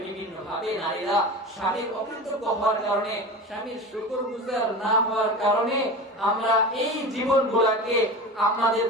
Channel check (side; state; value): both; normal; correlation 0.31